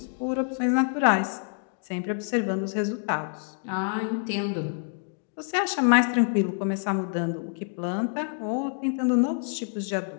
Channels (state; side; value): silent; right; digital silence